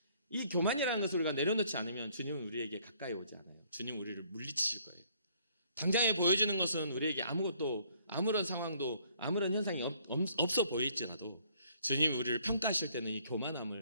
이 교만이라는 것을 우리가 내려놓지 않으면 주님은 우리에게 가까이 오지 않아요. 주님은 우리를 물리치실 거예요. 당장에 보여지는 것은 우리에게 아무런 상황도 아무런 현상이 없어 보일지라도 주님이 우리를 평가하실 때는 이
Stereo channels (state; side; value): inverted; both; correlation -0.63